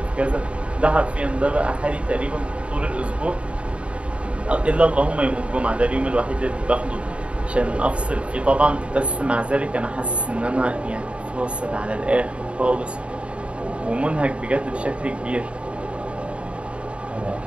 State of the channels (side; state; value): left; late; 0.060 ms